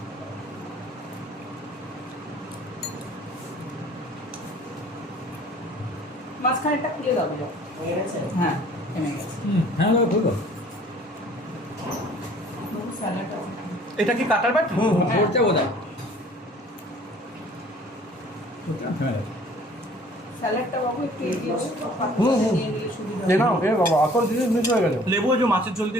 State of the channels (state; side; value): normal; both; correlation 0.53